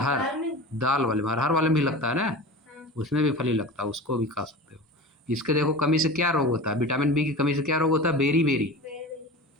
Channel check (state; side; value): normal; both; correlation 0.33